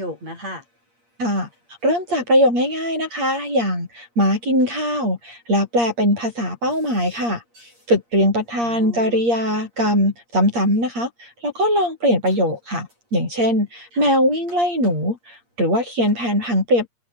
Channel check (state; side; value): late; left; 8.5 ms